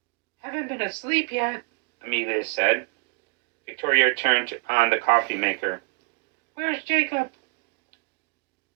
Haven't been asleep yet, Amelia said. Victoria turned on the coffee maker. Where's Jacob?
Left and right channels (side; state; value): left; quieter; 29.9 dB